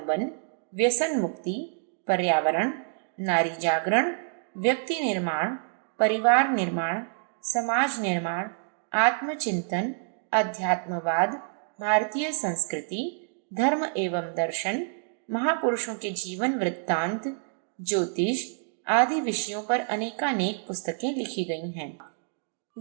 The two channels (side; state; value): left; silent; digital silence